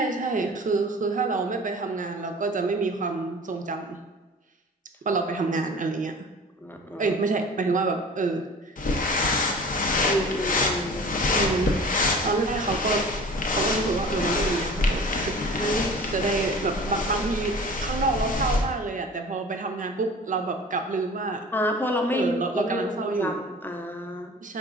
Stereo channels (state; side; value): normal; both; correlation 0.42